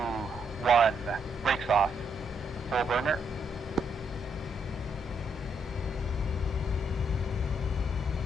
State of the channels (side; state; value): both; normal; correlation 0.76